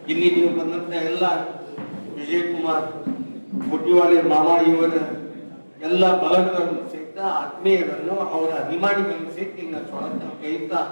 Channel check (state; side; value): inverted; both; correlation -1.00